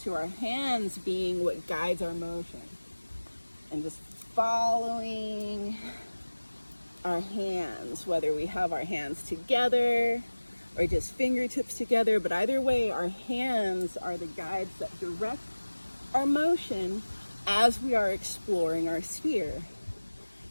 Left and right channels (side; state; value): both; inverted; correlation -1.00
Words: to our hands being what guides our motion. And just following our hands, whether we have our hands together or just fingertips together, but either way, our hands are the guides that direct our motion as we are exploring our sphere.